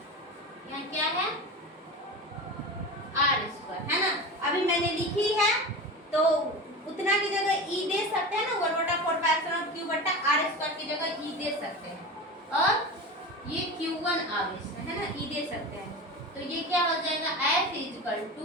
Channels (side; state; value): both; normal; correlation 0.28